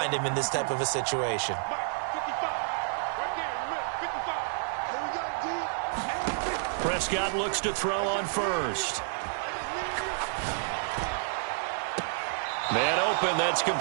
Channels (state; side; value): silent; left; digital silence